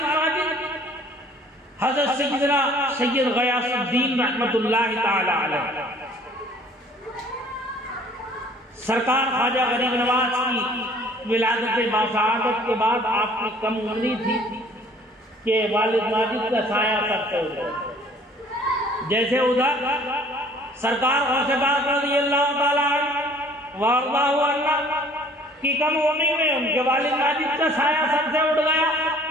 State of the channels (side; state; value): both; normal; correlation 0.54